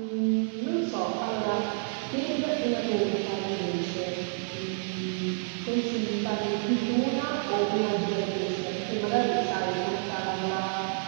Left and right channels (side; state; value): left; silent; 59 dB below the other